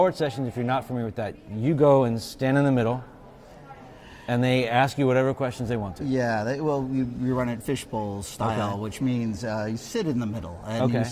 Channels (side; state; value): both; identical; correlation 1.00